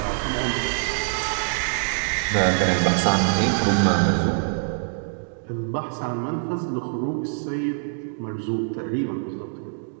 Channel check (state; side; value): silent; left; digital silence